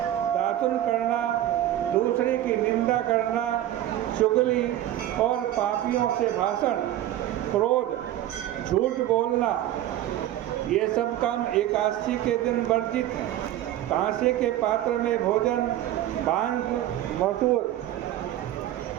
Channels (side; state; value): left; quieter; 13.1 dB